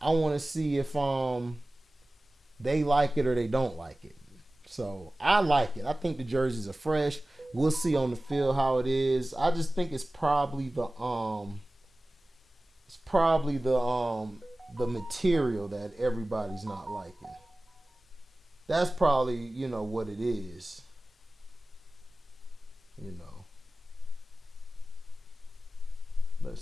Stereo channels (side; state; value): both; normal; correlation 0.96